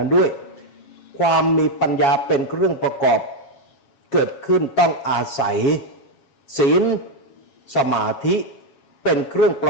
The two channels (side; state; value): right; late; 7.3 ms